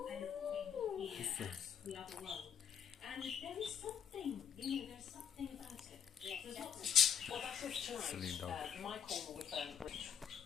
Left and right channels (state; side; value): quieter; right; 7.9 dB